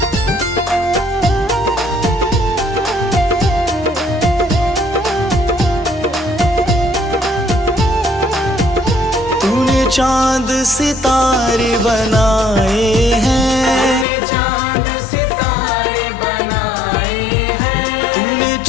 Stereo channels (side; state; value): right; drops out; at 14.1 s